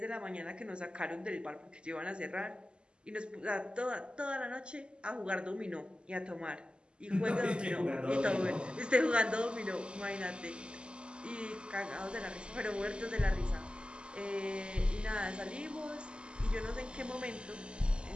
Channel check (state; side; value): late; left; 0.051 ms